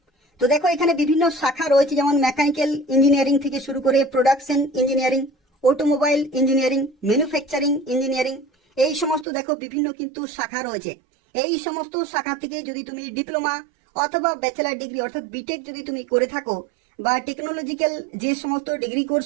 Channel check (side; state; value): left; drops out; at 9.2 s